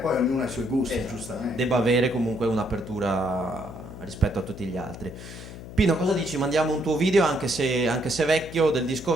ognuno ha i suoi gusti, esatto, giustamente. debba avere comunque un'apertura rispetto a tutti gli altri. Pino, cosa dici? Mandiamo un tuo video anche se vecchio, del disco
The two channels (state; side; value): noise; left; hum, 13 dB below the sound